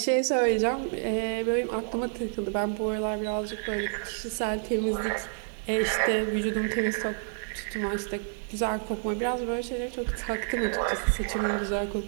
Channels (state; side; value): silent; left; digital silence